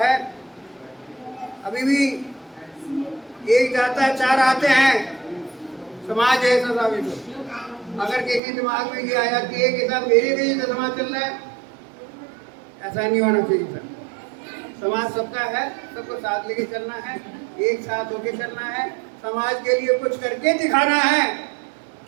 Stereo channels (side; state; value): left; drops out; at 8.4 s